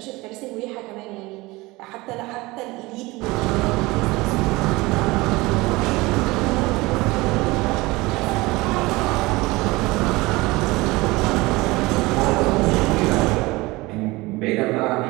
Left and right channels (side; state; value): left; quieter; 21.8 dB